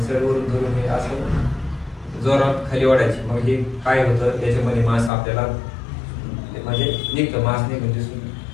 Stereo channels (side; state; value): right; drops out; at 5.1 s